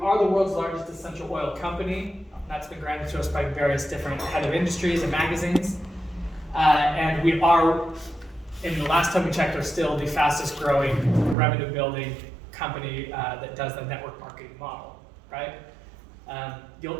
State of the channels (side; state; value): left; drops out; at 11.4 s